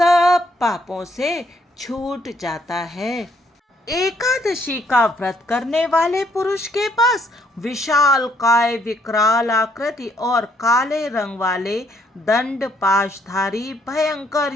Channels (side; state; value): both; normal; correlation 0.68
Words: पापों से छूट जाता है। एकादशी का व्रत करने वाले पुरुष के पास विशाल काय, विकराल आकृति और काले रंग वाले दंड पाशधारी भयंकर